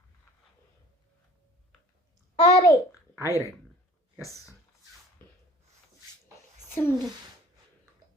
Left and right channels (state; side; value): normal; both; correlation 0.48